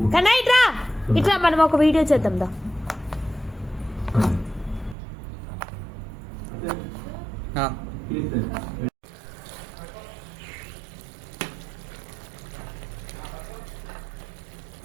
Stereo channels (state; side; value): drops out; left; at 5.0 s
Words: కన్నా ఇట్రా ఇట్లా మనం ఒక వీడియో చేద్దాం దా.